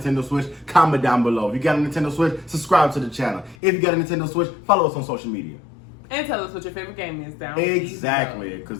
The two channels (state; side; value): drops out; right; at 3.6 s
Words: Switch, comment down below. If you got a Nintendo Switch, subscribe to the channel. If you got a Nintendo Switch, follow us on social media. And tell us what your favorite game is down Exactly,